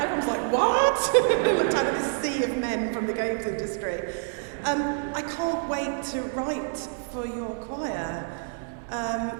Everyone's like, what? Looked out at this sea of men from the games industry. I can't wait to write for your choir.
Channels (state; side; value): silent; left; digital silence